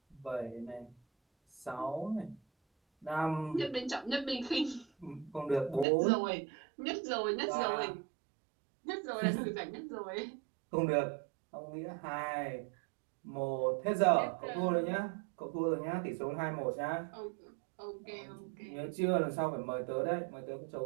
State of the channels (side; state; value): left; drops out; at 5.9 s